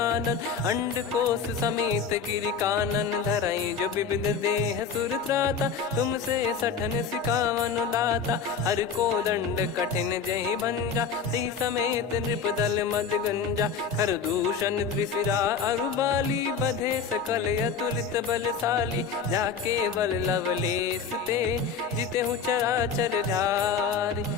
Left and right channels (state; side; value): quieter; right; 6.0 dB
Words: अंड कोश समेत गिरि कानन। धरई जो विविध देह सुर त्राता, तुमसे सठन सिखावन दाता। हर को दंड कठिन जहि भंजा, ती समेत नृप दल मद गंजा। कर दूषण त्रिशिरा अरुबाली, बधे सकल अतुलित बलशाली। जाके बल लवलेस ते, जिते हूँ चराचर झारी।